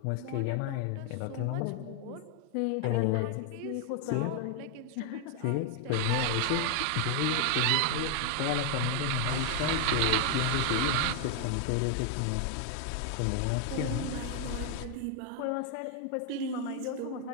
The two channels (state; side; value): different; both; correlation 0.00